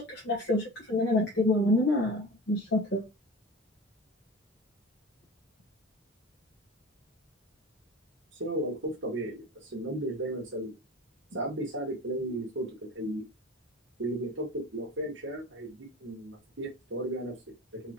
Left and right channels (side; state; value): both; normal; correlation 0.34